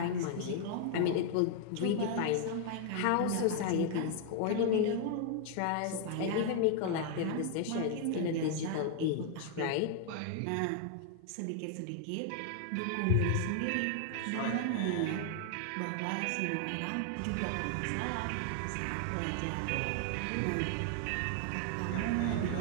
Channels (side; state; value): both; different; correlation 0.00